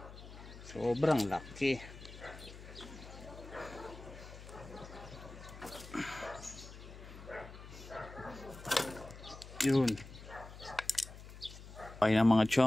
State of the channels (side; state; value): left; noise; hum, 15 dB below the sound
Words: Sobrang laki. Yun. Okay na mga